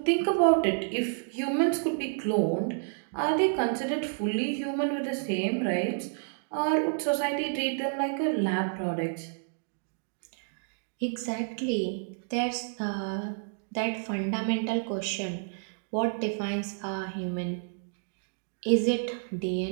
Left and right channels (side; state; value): left; silent; digital silence